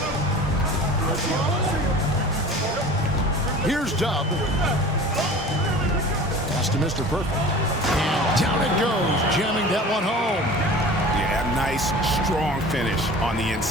Here's Dub. Pass to Mr. Perfect. And down it goes, jamming that one home. Yeah, nice, strong finish on the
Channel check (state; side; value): normal; both; correlation 0.40